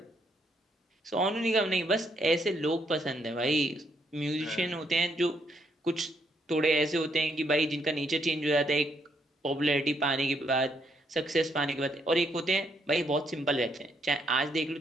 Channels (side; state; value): both; normal; correlation 0.74